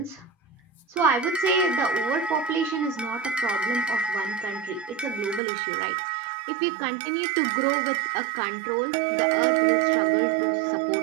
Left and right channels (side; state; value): left; drops out; at 5.4 s